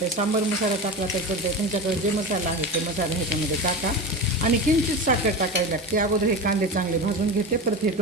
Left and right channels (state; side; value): normal; both; correlation 0.25